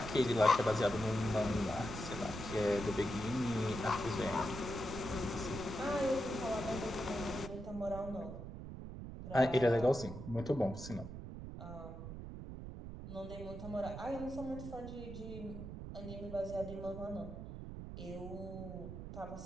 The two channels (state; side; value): noise; right; rumble, 9 dB below the sound